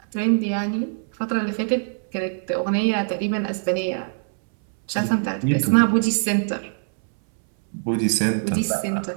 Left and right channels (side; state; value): left; silent; 64 dB below the other